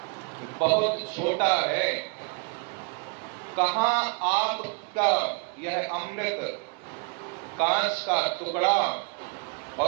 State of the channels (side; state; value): left; quieter; 35.7 dB